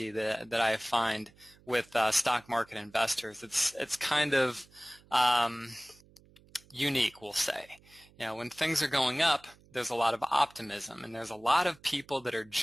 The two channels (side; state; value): right; noise; hum, 27 dB below the sound